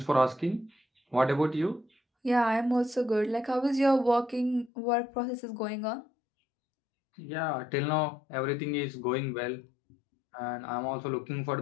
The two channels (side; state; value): right; drops out; at 4.7 s